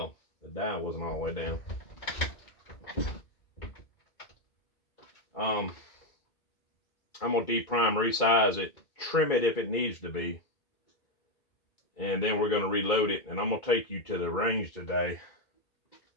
the die wasn't all the way down. I'm gonna deprime, resize it, trim it if it needs to be, and then we're gonna reload it. And I'm gonna take you to the range today,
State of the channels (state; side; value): late; right; 2.3 ms